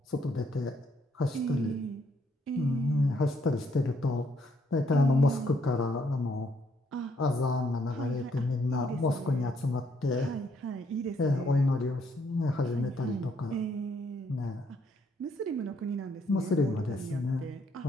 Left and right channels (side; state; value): both; normal; correlation 0.70